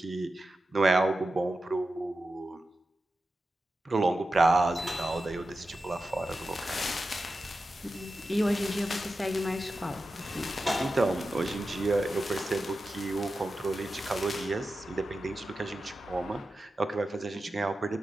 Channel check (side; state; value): both; normal; correlation 0.92